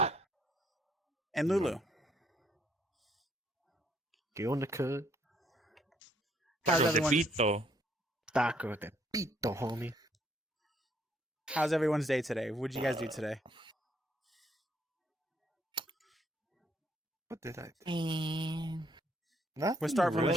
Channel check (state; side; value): normal; both; correlation 0.69